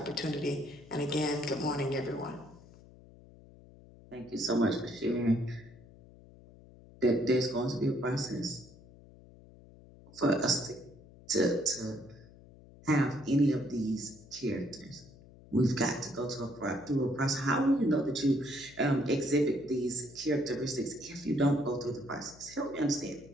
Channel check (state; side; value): noise; left; hum, 22 dB below the sound